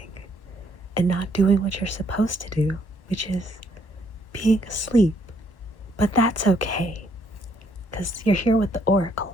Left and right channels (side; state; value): right; late; 1.2 ms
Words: and not doing what you're supposed to do, which is being asleep. But that's okay, because you're here with the Oracle.